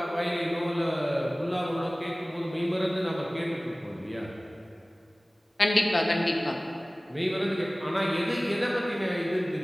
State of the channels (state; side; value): normal; both; correlation 0.98